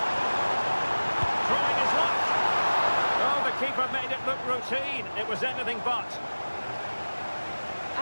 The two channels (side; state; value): both; inverted; correlation -1.00